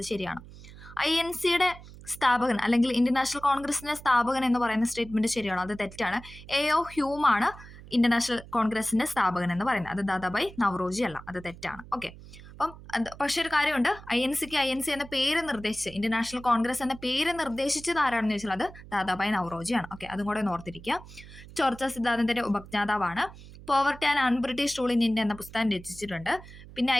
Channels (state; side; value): noise; right; hum, 17 dB below the sound